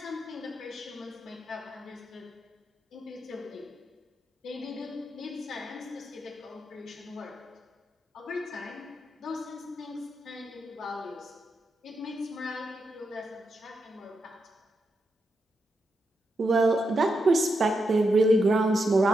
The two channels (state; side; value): normal; both; correlation 0.84